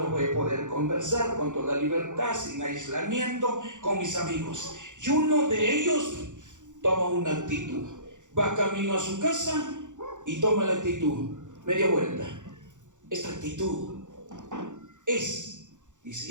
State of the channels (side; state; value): left; late; 0.86 ms